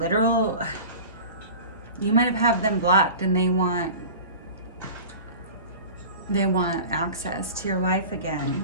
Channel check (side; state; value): both; inverted; correlation -0.37